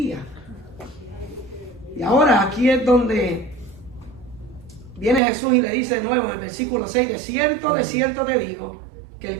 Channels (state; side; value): drops out; left; at 5.2 s